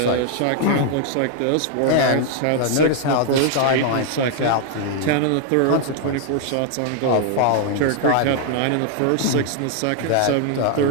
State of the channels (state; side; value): different; both; correlation 0.00